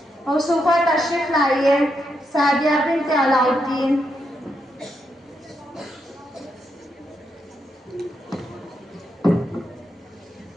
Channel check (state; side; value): normal; both; correlation 0.81